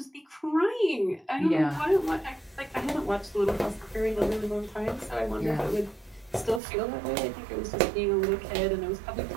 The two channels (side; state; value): left; drops out; at 6.6 s